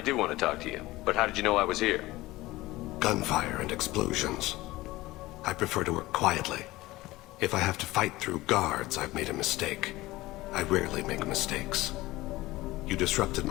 do want to talk to you, but how did you know I was here? Gunfire and explosions. I prefer to work quietly. If I have to fight through guards, I've made a mistake. I rarely make mistakes. You disrupted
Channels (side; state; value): right; quieter; 18.7 dB